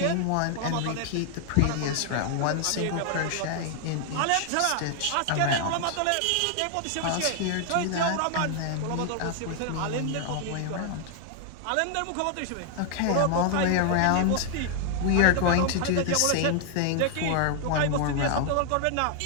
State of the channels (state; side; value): different; both; correlation 0.00